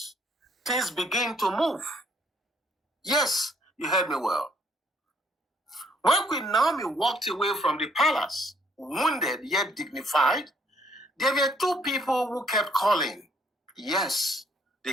things begin to move. Yes, you heard me well. When Queen Naomi walked away from the palace, wounded yet dignified, there were two people who kept calling. Yes,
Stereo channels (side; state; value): both; normal; correlation 0.66